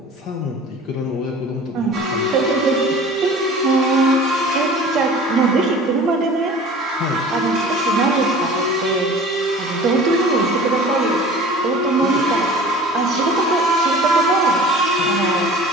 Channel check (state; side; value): normal; both; correlation 0.43